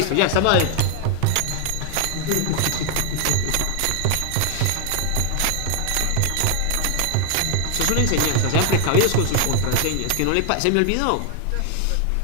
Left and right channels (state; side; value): different; both; correlation 0.00